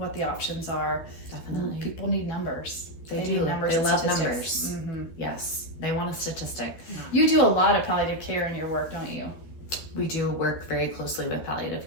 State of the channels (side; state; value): right; late; 12 ms